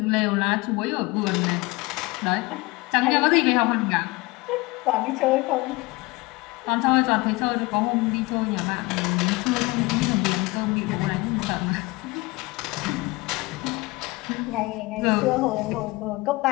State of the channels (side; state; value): right; quieter; 23.0 dB